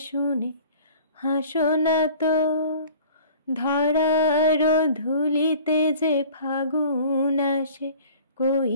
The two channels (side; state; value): both; inverted; correlation -0.47